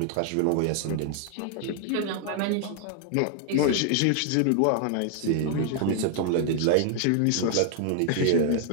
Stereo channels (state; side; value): different; both; correlation 0.00